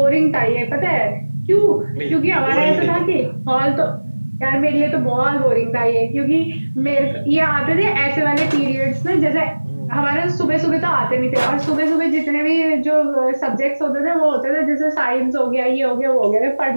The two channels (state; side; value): inverted; both; correlation -1.00